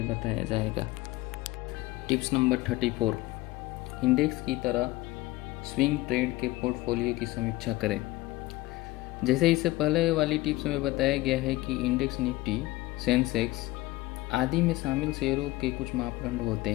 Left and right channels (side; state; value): right; quieter; 19.0 dB